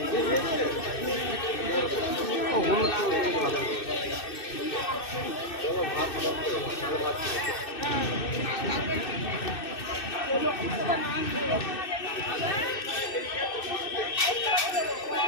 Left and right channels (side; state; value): right; late; 2.6 ms